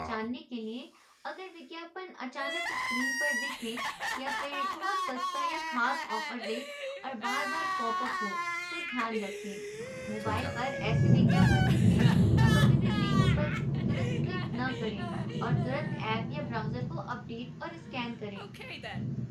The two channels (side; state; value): both; identical; correlation 1.00